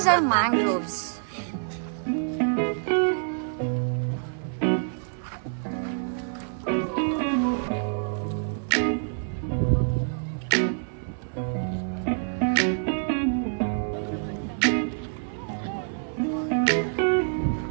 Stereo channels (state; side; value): silent; left; 58 dB below the other